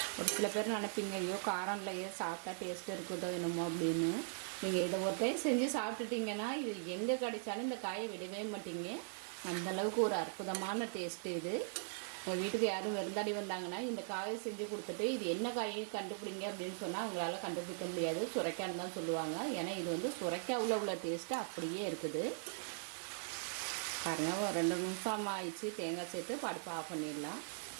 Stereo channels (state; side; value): silent; left; digital silence